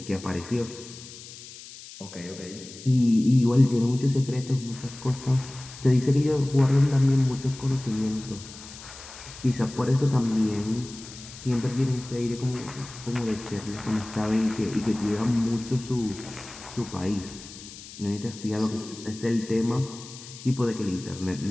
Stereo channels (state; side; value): noise; left; hiss, 15 dB below the sound